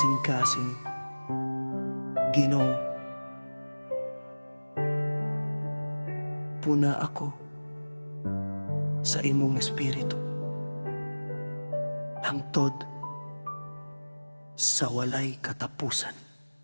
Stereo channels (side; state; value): both; inverted; correlation -1.00